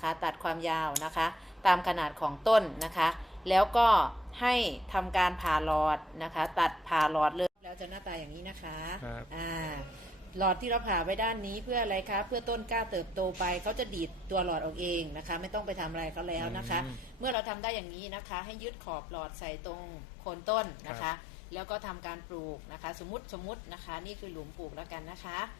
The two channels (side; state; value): right; drops out; at 17.4 s